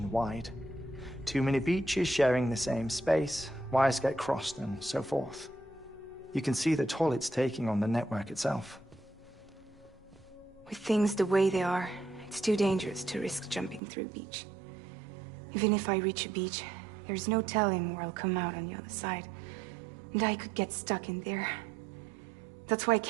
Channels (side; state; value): left; drops out; at 13.8 s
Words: Too many beaches sharing the same space, wires get crossed, and so forth. You can see the toll it's taking on the network itself. With things the way they are, it's too dangerous to risk jumping through a beach. Even if I reach a beach, there's no telling where I'll come out on the other side. And I could get stuck in there. That's why I